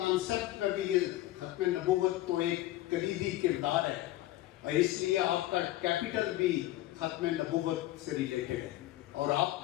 میں بھی یہ ختم نبوت تو ایک کلیدی کردار ہے، اور اس لیے آپ کا کیپٹل بھی ختم نبوت سے ریلیٹڈ ہے. اور آپ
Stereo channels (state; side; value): quieter; right; 15.7 dB